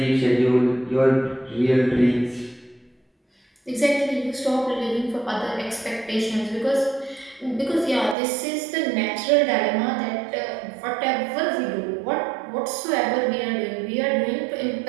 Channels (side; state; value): left; drops out; at 8.2 s